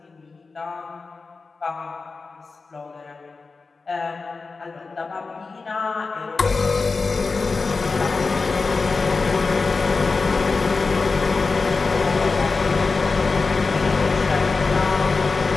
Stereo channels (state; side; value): quieter; right; 4.2 dB